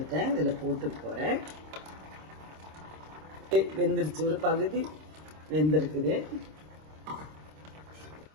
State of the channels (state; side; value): late; left; 26 ms